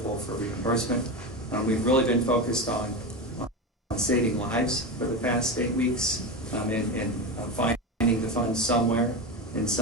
for reimbursement. We've really been focused on saving lives for the past 8 weeks and finding the funds somewhere in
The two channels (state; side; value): normal; both; correlation 0.19